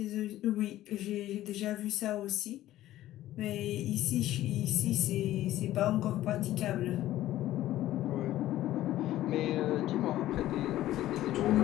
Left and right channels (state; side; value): quieter; right; 14.3 dB